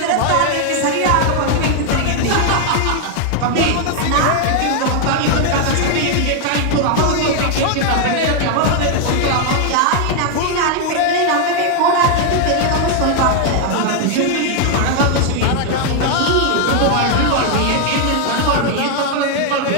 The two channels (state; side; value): different; both; correlation 0.00